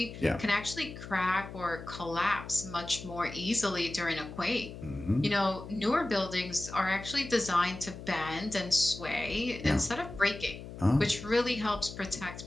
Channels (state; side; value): noise; left; hum, 12 dB below the sound